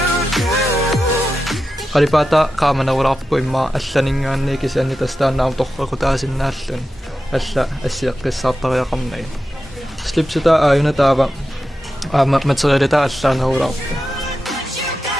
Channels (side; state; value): both; normal; correlation 0.91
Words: Qalipata qaamanavulaarpuimmaa allaningaanni kisianni tastaannaam torqaqutaasinnaallun alla assiaqqissaartariaqarnagi. Slipsuta aajuna taava aama materialita allaanavulaarpu.